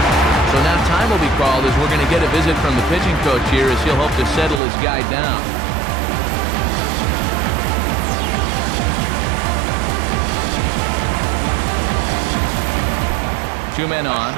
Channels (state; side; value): drops out; left; at 4.6 s